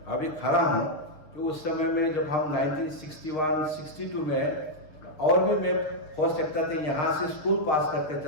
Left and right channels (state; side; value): late; right; 6.6 ms